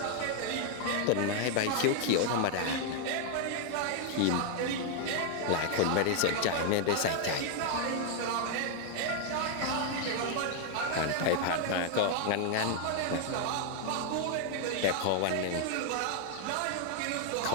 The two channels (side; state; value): both; different; correlation 0.00